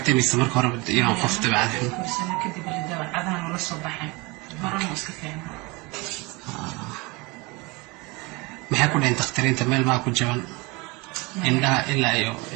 mise marka hore inuu qof dabeecad guursana kadib dabeecadahan la soo baxay marana iska fiicnaa maxay ku dhayn dakhtariinta meel maa ku jaban indhaha ilaa iyo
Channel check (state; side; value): quieter; left; 25.7 dB